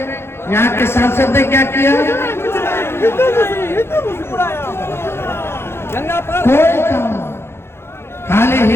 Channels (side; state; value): right; late; 0.12 ms